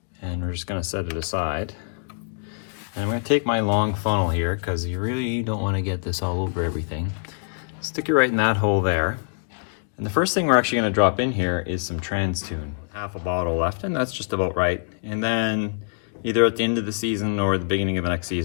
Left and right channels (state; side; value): silent; right; digital silence